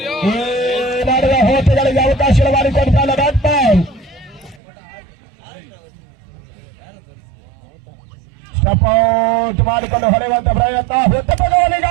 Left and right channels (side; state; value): left; drops out; at 4.6 s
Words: ಈ ನಡೆದ ಹೋಟೆಗಳಿಗೆ ಅವಕಾಶ ಮಾಡಿಕೊಡ್ತಾನೆ ಬ್ಯಾಟ್ ಬಾಲ್. ಸ್ಟಪೌಟ್ ಮಾಡಿಕೊಂಡು ಹೊಡೆಯುವಂತ ಪ್ರಯತ್ನ